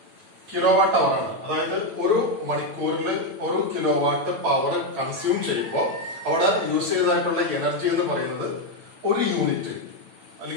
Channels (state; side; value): late; left; 9.0 ms